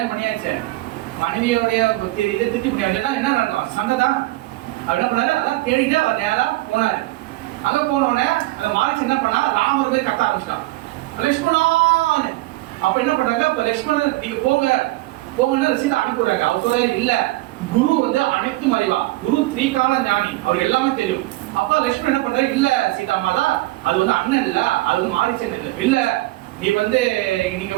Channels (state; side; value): quieter; left; 19.3 dB